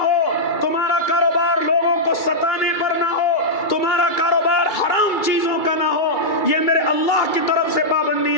ہو، تمہارا کاروبار لوگوں کو ستانے پر نہ ہو، تمہارا کاروبار حرام چیزوں کا نہ ہو۔ یہ میرے اللہ کی طرف سے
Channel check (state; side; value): late; right; 2.3 ms